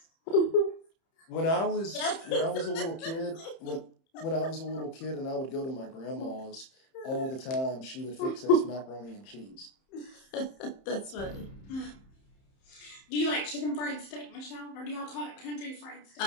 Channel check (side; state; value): right; late; 30 ms